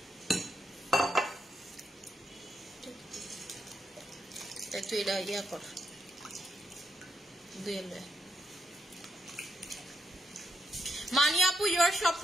একটু এটা ইয়া কর দুইলে। মানি আপু ইউর সব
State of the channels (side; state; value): both; normal; correlation 0.81